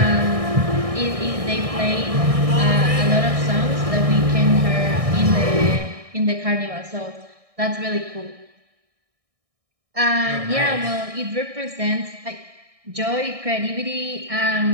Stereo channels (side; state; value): left; late; 1.6 ms